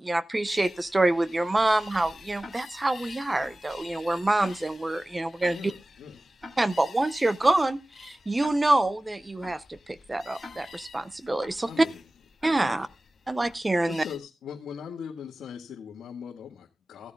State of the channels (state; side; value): normal; both; correlation 0.97